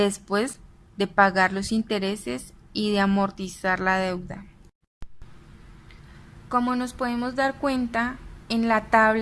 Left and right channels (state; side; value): identical; both; correlation 1.00